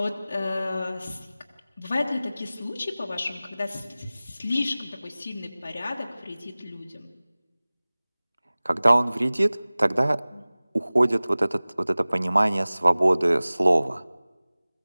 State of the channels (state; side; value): inverted; both; correlation -0.98